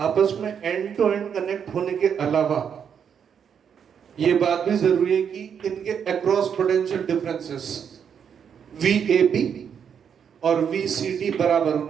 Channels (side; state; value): left; quieter; 7.6 dB